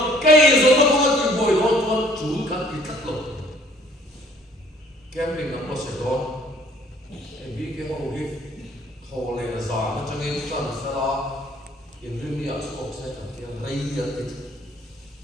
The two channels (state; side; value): normal; both; correlation 0.57